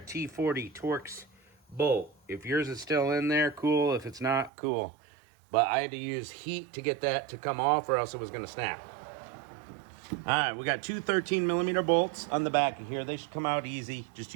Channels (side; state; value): left; drops out; at 4.5 s